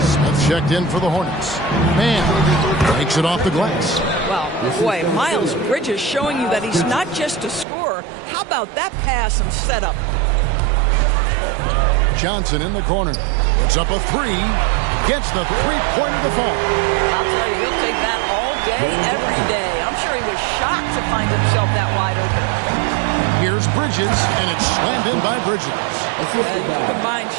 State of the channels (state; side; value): drops out; left; at 7.7 s